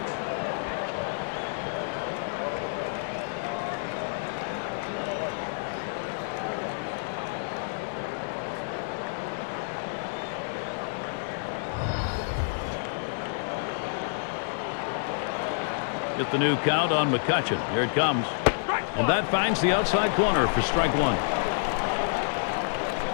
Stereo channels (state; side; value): silent; right; digital silence